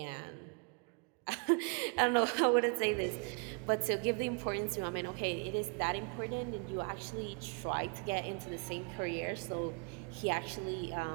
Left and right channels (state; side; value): quieter; left; 36.2 dB